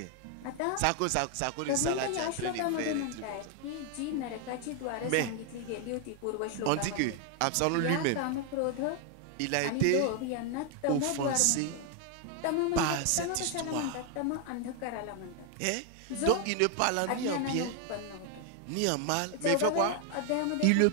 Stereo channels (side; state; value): both; different; correlation 0.01